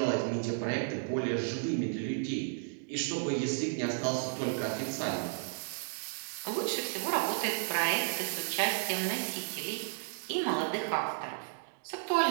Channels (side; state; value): left; silent; digital silence